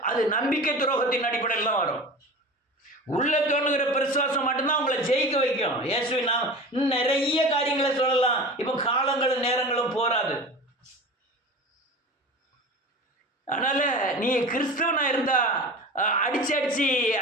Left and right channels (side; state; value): both; normal; correlation 0.34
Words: அது நம்பிக்கை துரோகத்தின் அடிப்படையில் தான் வரும். உள்ள தோணுகிற விசுவாசம் மட்டும்தான் உங்களை ஜெயிக்க வைக்கும். இயேசுவை நாம் நிறைய காரியங்களை சொல்லலாம், இப்போ காலங்களும் நேரங்களும் போராது. அதனால நீ கிறிஸ்தவனா இருந்தா அடிச்சு